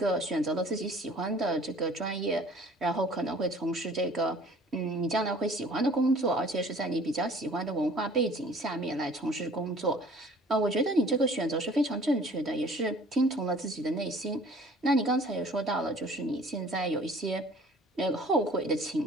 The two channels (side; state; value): both; normal; correlation 0.51